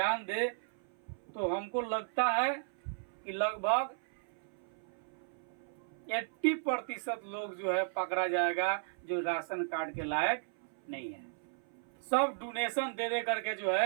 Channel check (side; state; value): left; silent; 54 dB below the other